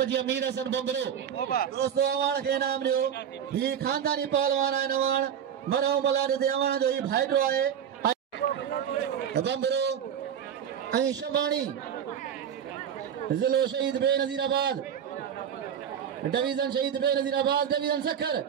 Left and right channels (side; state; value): left; quieter; 8.7 dB